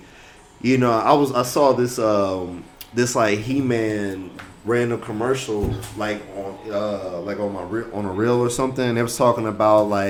I saw this, He-Man random commercial, on a reel or something. They was talking about,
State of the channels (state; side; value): identical; both; correlation 1.00